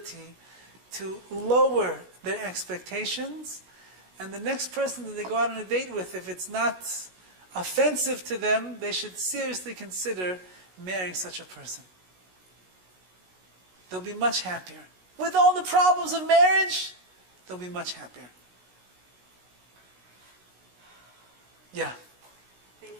to lower their expectations. And the next person that they go out on a date with, if it's not offensive to them, they should seriously consider marrying such a person. They'll be much happier. With all the problems of marriage, they'll be much happier. Yeah.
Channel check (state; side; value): late; left; 16 ms